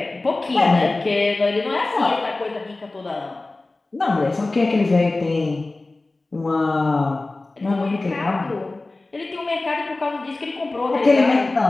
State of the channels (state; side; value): quieter; right; 3.2 dB